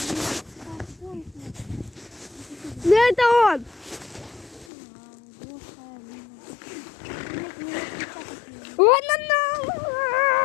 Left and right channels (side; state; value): right; drops out; at 4.7 s